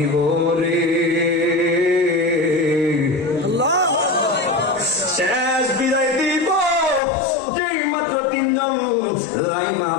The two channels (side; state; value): right; drops out; at 7.0 s